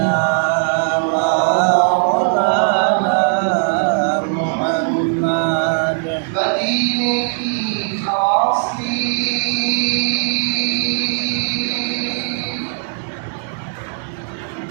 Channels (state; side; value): silent; left; 60 dB below the other